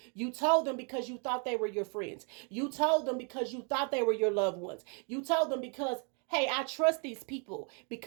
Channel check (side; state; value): left; quieter; 37.9 dB